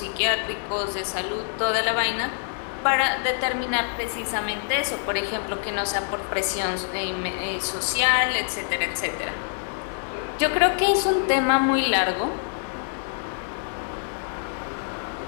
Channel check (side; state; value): right; silent; digital silence